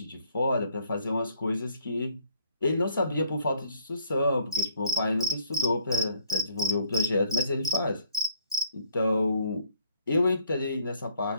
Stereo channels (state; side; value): inverted; both; correlation -0.64